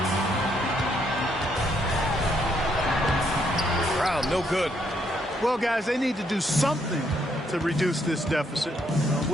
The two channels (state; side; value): normal; both; correlation 0.73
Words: Brown, no good. Well, guys, they need to do something to reduce this deficit.